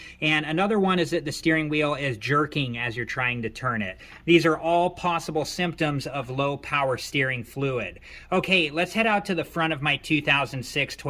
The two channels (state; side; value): identical; both; correlation 1.00